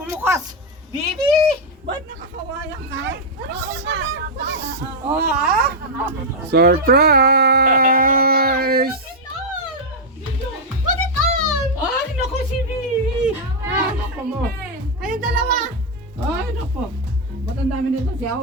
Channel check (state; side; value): normal; both; correlation -0.02